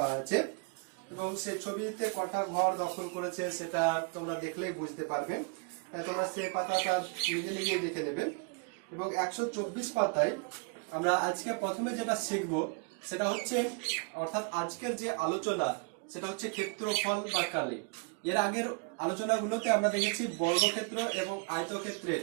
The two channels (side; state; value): left; quieter; 35.3 dB